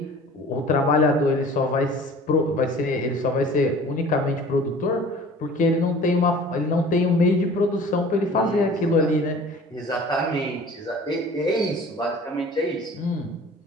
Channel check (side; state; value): both; normal; correlation 0.45